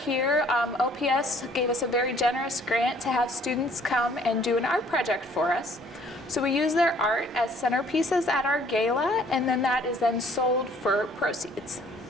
OPS gave us a very generous grant to have students come and do an art project for us. So we use their art as centerpieces at our gala, and then that is then sold for proceeds.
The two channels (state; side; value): noise; right; rumble, 26 dB below the sound